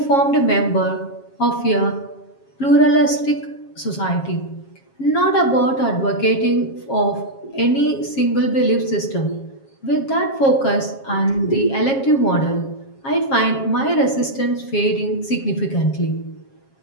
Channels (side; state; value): right; late; 7.4 ms